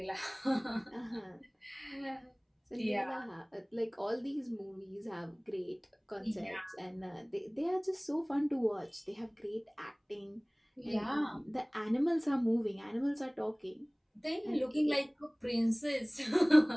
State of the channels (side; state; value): both; identical; correlation 1.00